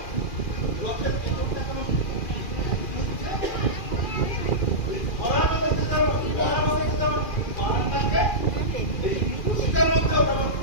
রথের তেতনটা কেন ঘুরছে? ওই ধরার মধ্যে যেমন বান ডাকে, এই রশিটার মধ্যেও তেমন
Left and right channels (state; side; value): late; right; 2.4 ms